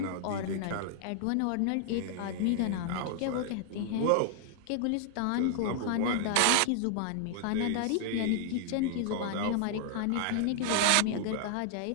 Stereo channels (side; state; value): both; different; correlation 0.00